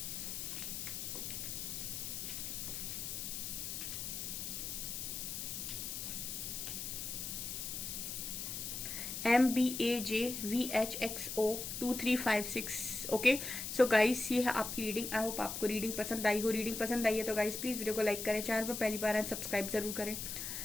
MBAJVHXO2356। ओके, सो गाइस ये है आपकी रीडिंग। आई होप आपको रीडिंग पसंद आई हो। रीडिंग पसंद आई है तो गाइस प्लीज वीडियो को लाइक करें, चैनल पर पहली बार आए सब्सक्राइब जरूर करें।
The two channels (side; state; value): left; noise; hiss, 5 dB below the sound